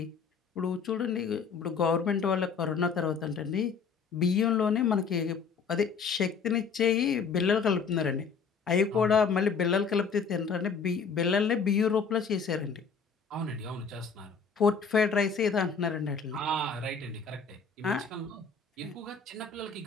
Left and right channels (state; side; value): quieter; right; 5.6 dB